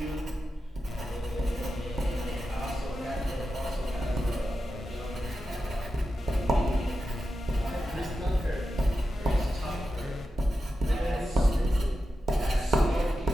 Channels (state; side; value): normal; both; correlation 0.90